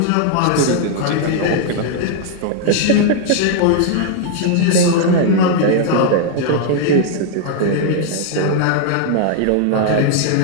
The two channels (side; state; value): both; different; correlation 0.00